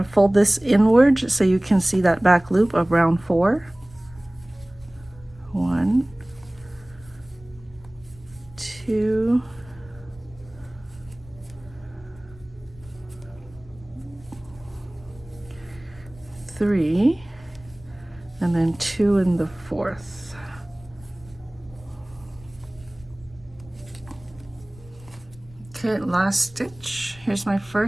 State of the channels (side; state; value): left; noise; rumble, 22 dB below the sound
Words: fold this inward so you can see that back loop of round 4. 1, 2, 3, and then 2 in the fourth. Okay, last stitch. Here's my